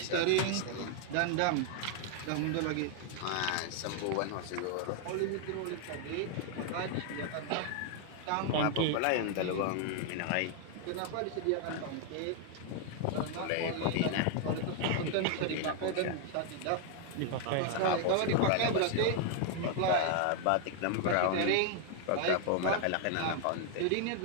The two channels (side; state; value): both; different; correlation 0.00